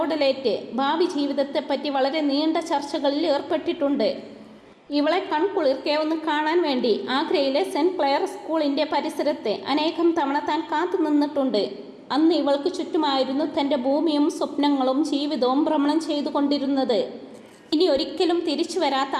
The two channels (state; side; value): identical; both; correlation 1.00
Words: ഭാവി ജീവിതത്തെപ്പറ്റി വളരെ നീണ്ട ചർച്ചകളിൽ ഏർപ്പെട്ടിട്ടുണ്ട്. ഇവളെ കൺകുളിർക്കെ ഒന്ന് കാണാൻ വേണ്ടി ആഗ്രയിലെ സെന്റ് ക്ലെയർ സ്കൂളിൻ്റെ പരിസരത്ത് അനേകം തവണ താൻ കാത്തു നിന്നിട്ടുണ്ട്. അന്ന് ഇവൾക്ക് ചുറ്റുമായിരുന്നു തൻ്റെ ഭൂമിയും സ്വപ്നങ്ങളും ജീവിതവും ഭ്രമണം ചെയ്തുകൊണ്ടിരുന്നത്. ഇനി ഒരിക്കലും തിരിച്ചു വരാത്ത